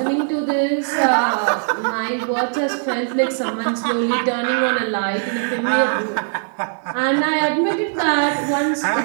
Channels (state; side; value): silent; left; digital silence